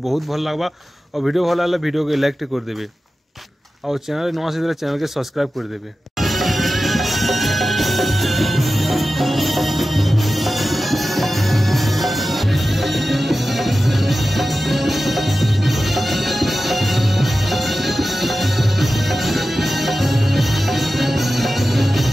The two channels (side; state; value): both; normal; correlation 0.94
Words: बहुत भल लागबा और वीडियो भल लागले वीडियो के लाइक कर देबे और चैनल नवा से चैनल के सब्सक्राइब कर देबे।